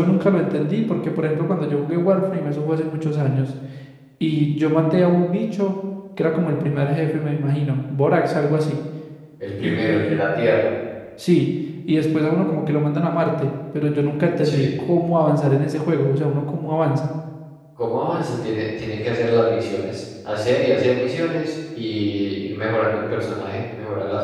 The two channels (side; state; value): both; identical; correlation 1.00